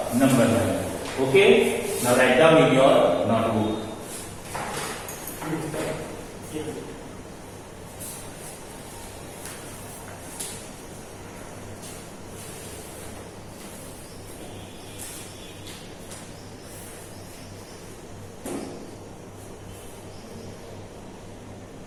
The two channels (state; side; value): identical; both; correlation 1.00